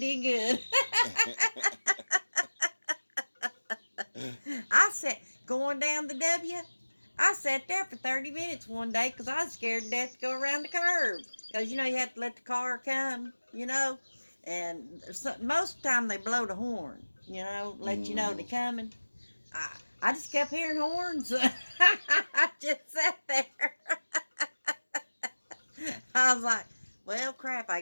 good. I sat, going down the W, I sat there for 30 minutes one day because I was scared to death to go around the curb. Because, you have to let the car come, And most of the time they blow the horn, let you know they're coming. I just kept hearing horns. I just sat there. I was like, well, crap, I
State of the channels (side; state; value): both; inverted; correlation -1.00